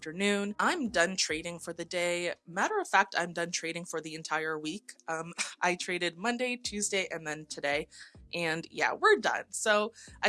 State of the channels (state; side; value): identical; both; correlation 1.00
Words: I'm done trading for the day. Matter of fact, I'm done trading for the entire week. I traded Monday, Tuesday, and then today. And yeah, we're done. So